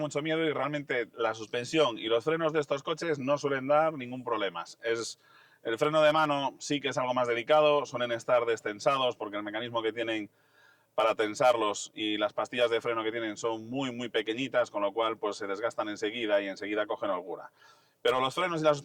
miedo y realmente la suspensión y los frenos de estos coches no suelen dar ningún problema. El freno de mano sí que es algo más delicado, suelen estar destensados porque el mecanismo que tienen para tensarlos y las pastillas de freno que tienen son muy pequeñitas, con lo cual pues se desgastan enseguida y enseguida cogen holgura. Pero los frenos y la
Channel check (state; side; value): identical; both; correlation 1.00